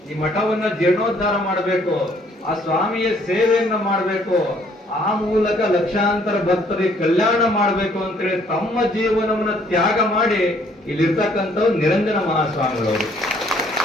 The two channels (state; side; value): normal; both; correlation 0.63